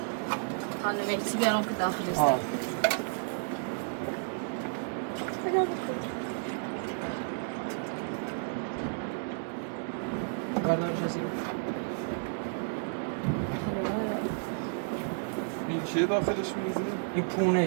خانم مهدی بیارم که داخل است. بردار جزیره این چیه داخلش میریزی؟ این پونه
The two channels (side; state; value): left; silent; digital silence